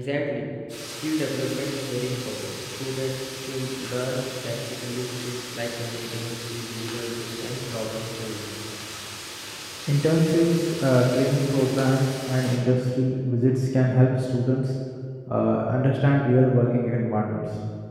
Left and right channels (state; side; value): identical; both; correlation 1.00